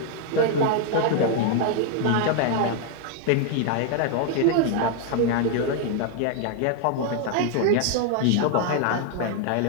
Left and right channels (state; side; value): different; both; correlation 0.00